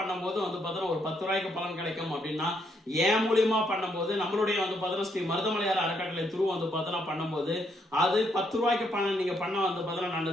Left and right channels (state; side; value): normal; both; correlation 0.75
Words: வந்து பார்த்தோன்னா ஒரு 10 ரூபாய்க்கு பலன் கிடைக்கும் அப்படின்னா ஏன் மூலியமா பண்ணும்போது நம்மளுடைய வந்து பார்த்தோன்னா ஸ்ரீ மருதமலையார் அறக்கட்டளை துரு வந்து பார்த்தோன்னா பண்ணும்போது அது 10 ரூபாய்க்கு பணம் நீங்க பண்ண வந்து பார்த்தோன்னா